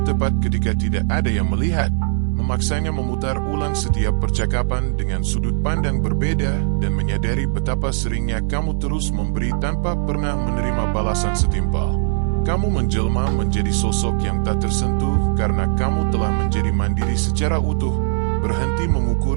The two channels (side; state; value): left; silent; 66 dB below the other